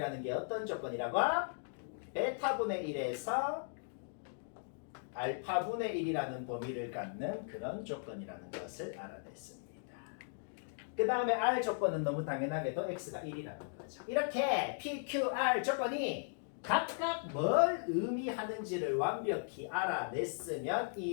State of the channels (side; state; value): right; silent; digital silence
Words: 게 어떤 조건이라고? 베타분의 1에서 알파분의 1이라는 범위를 갖는 그런 조건이라는 것을 알아냈습니다. 그 다음에 R 조건은 너무 당연하게도 X가 1이라는 거죠. 이렇게 P, Q, R 조건이 각각 뭘 의미하는지를 완벽히 알아냈으면